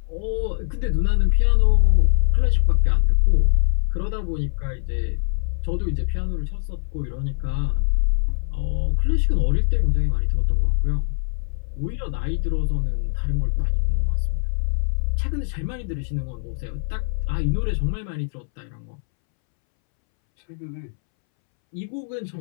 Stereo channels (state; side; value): silent; right; 64 dB below the other